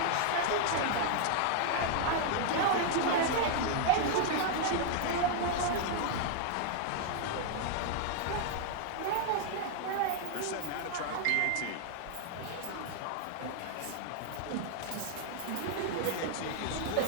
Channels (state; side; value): different; both; correlation 0.00